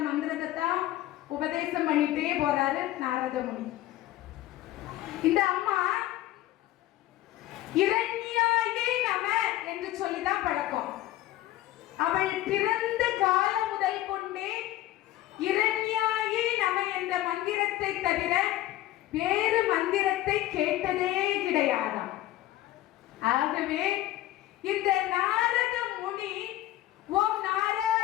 மந்திரத்தை தான் உபதேசம் பண்ணிட்டே போறாரு நாரத முனி. இந்த அம்மா இரண்யாயே நம என்று சொல்லிதான் பழக்கம். அவள் பிறந்த காலம் முதல் கொண்டே இரண்யாயே நம என்ற மந்திரத்தை தவிர வேறு மந்திரத்தை கேட்டதே கிடையாதாம். ஆகவே இந்த நாரத முனி ஓம்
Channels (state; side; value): quieter; right; 15.0 dB